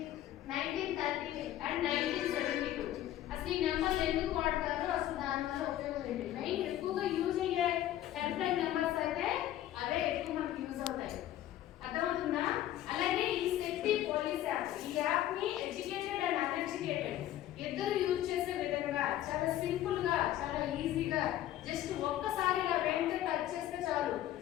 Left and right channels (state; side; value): quieter; right; 12.9 dB